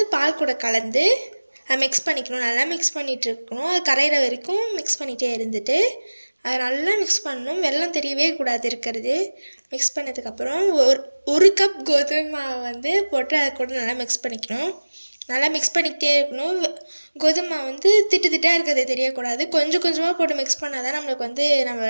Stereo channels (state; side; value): inverted; both; correlation -1.00